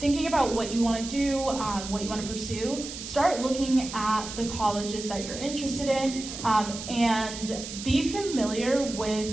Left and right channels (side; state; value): right; noise; hiss, 9 dB below the sound